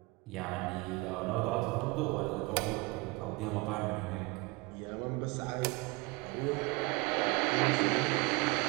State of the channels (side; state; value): left; quieter; 25.7 dB